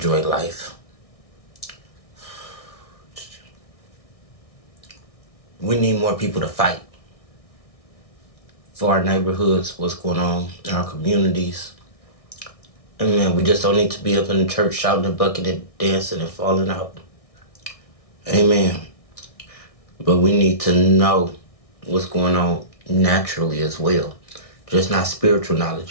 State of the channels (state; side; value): late; right; 1.6 ms